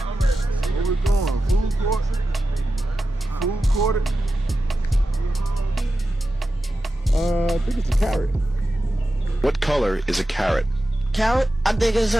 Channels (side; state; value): both; normal; correlation 0.92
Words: Where we going? Food court? Food court? I think it's a carrot. What color is a carrot? Carrot? I think it's